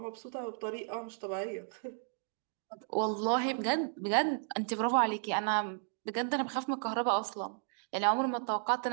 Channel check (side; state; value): left; silent; digital silence